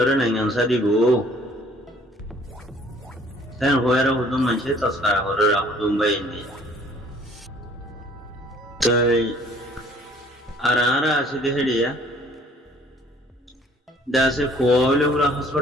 নাইগানসা দিব তাই হয়ে হুদুম মানছে তস্কারা করে হুদুম বাইনি তাই আর আছে দেখে দিয়া দাসে কোলে পুরা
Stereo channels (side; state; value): both; normal; correlation 0.57